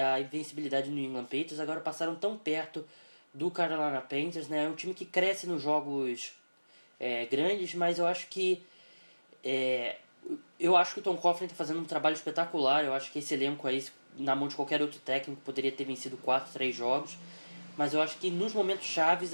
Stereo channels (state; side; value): inverted; both; correlation -1.00